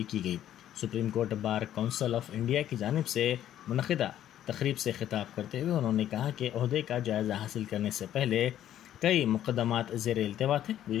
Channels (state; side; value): quieter; right; 11.6 dB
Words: की गई। Supreme court bar council of India की जानिब से मुनक़िदा तकरीब से खिताब करते हुए उन्होंने कहा कि ओहदे का जायज़ा हासिल करने से पहले कई मुकदमात ज़ेर इल्तिवा थे।